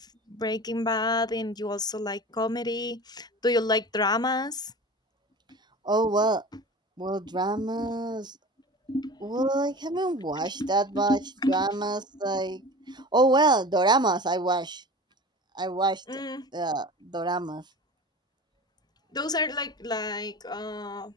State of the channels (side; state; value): both; normal; correlation 0.36